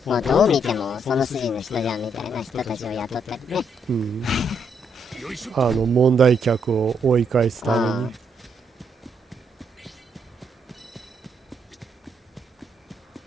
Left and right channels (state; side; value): normal; both; correlation 0.75